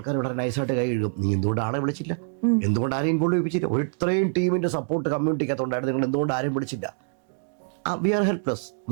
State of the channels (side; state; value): left; silent; digital silence